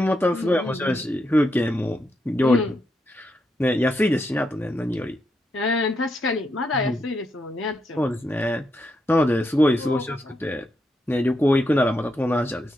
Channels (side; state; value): both; normal; correlation 0.82